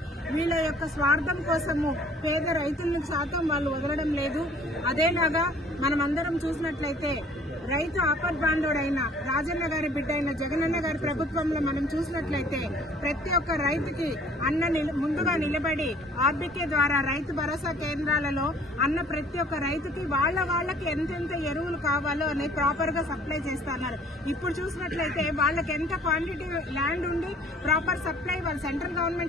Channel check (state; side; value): normal; both; correlation 0.54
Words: వీళ్ళ యొక్క స్వార్థం కోసము పేద రైతులను శాతం వాళ్ళు వదలడం లేదు. అదేలాగా మనమందరం చూసినట్లయితే రైతు ఆపద్బాంధవుడైన రాజన్న గారి బిడ్డ అయిన జగనన్న గారి ప్రభుత్వంలో మనం చూసినట్లయితే ప్రతి ఒక్క రైతుకి ముందుగా నిలబడి ఆర్బీకే ద్వారా రైతు భరోసా కేంద్రాలలో ప్రతి ఒక్క రైతుకి వాళ్ళకి ఎంతెంత ఎరువులు కావాలో అని ప్రాపర్ గా సప్లై చేస్తున్నారు. ఇప్పుడు చూసినట్లయితే వాళ్ళకి ఎంత క్వాంటిటీ ల్యాండ్ ఉండి ప్రాపర్ సప్లై వాళ్ళు సెంట్రల్